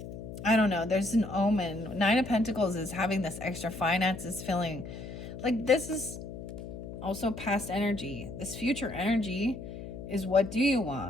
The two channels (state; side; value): noise; left; hum, 10 dB below the sound